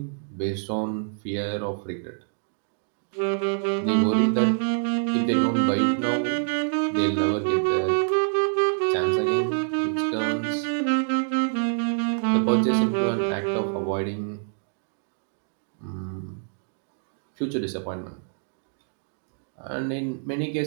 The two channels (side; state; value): left; silent; 61 dB below the other